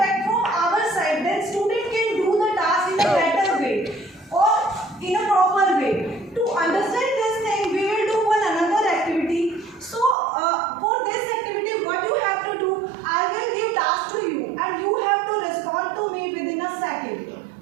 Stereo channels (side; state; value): left; drops out; at 10.2 s